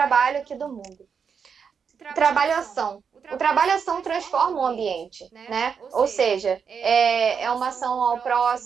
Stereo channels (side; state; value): left; quieter; 6.5 dB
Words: aqui do mundo. Trabalho-ação. O trabalho-ação transforma o ambiente, né? Ou seja, é uma ação ao